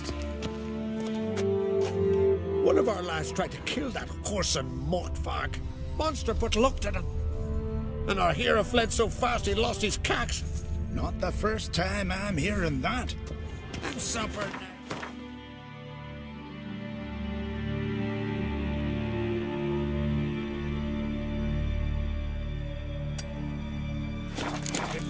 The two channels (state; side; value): identical; both; correlation 1.00